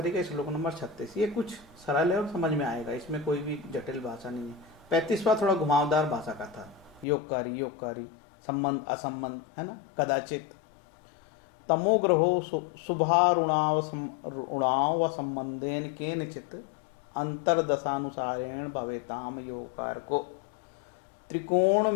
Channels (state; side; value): drops out; right; at 7.1 s